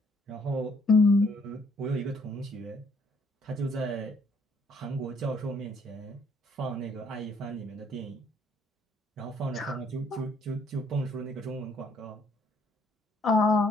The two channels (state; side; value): normal; both; correlation 0.66